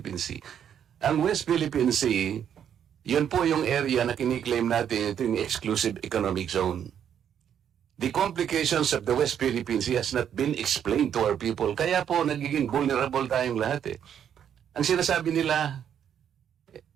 Sea. Ang West Philippine Sea, yun po yung area na kiniklaim natin, ito yung exclusive economic zone. The complications of the West Philippine Sea has not been explained to our people. Kaya po, nagiging vulnerable tayong lahat eh. Ang sinasabi nila,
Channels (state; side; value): quieter; left; 9.0 dB